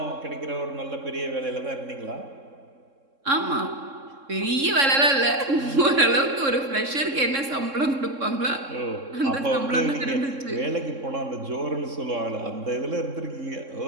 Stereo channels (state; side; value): late; left; 3.7 ms